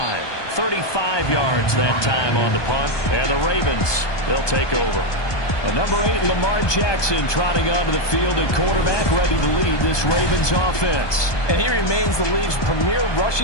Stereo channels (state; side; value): late; right; 1.2 ms